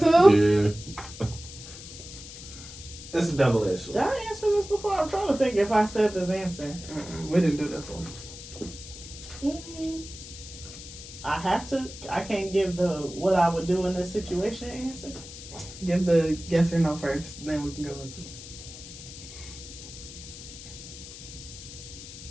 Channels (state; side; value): noise; left; hiss, 14 dB below the sound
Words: Yeah. It's a double-edged Did sword. I answer this before? I'm trying to think if I said this answer. We didn't do this one. I can't give the what I would do in this situation answer. Give the yes or no first, then we can go into it.